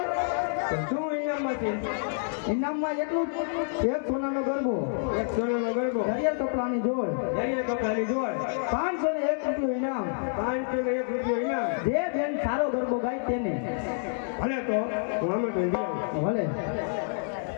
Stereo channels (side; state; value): right; silent; 59 dB below the other